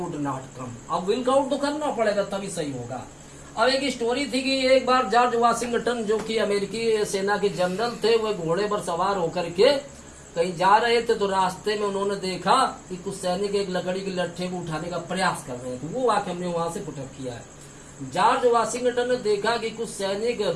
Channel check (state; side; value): identical; both; correlation 1.00